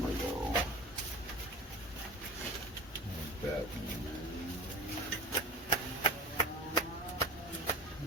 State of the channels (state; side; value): normal; both; correlation 0.32